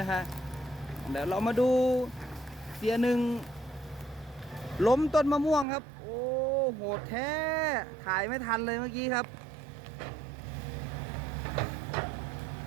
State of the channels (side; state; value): left; drops out; at 5.7 s